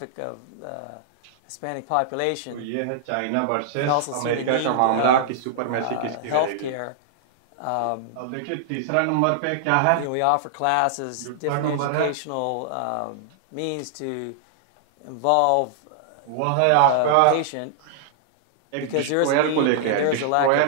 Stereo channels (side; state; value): both; different; correlation -0.01